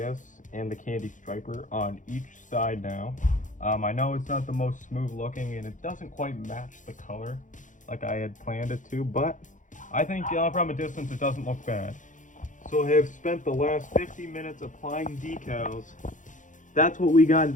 and the candy striper on each side now. I know it's not the most smooth looking, and it doesn't quite match the color like I had planned it to, but I think from a distance it doesn't look bad. So I have spent the last 50 minutes applying decals. That's what we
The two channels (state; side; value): late; right; 0.37 ms